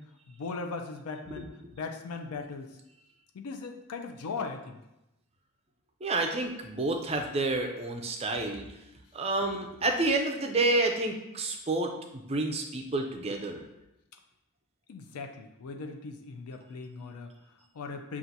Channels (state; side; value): normal; both; correlation 0.08